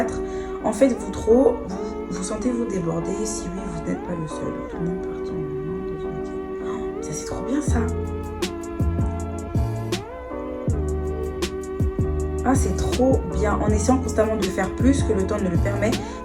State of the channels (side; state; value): both; identical; correlation 1.00